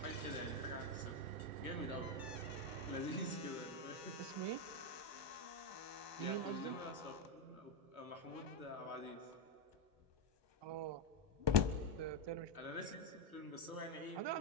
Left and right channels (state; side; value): late; left; 1.2 ms